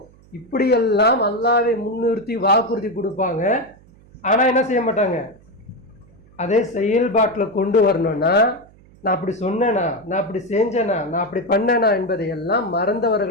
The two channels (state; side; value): noise; right; hum, 27 dB below the sound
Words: இப்படியெல்லாம் அல்லாஹ்வை முன்னிறுத்தி வாக்குறுதி கொடுப்பாங்க. ஆனால் என்ன செய்ய மாட்டாங்க, அதே செயல்பாட்டில் கொண்டு வரணும்னா நான் அப்படி சொன்னேனா, நான் அப்படி செஞ்சேனா, நான் அப்படி பண்ணேனா என்பதையெல்லாம்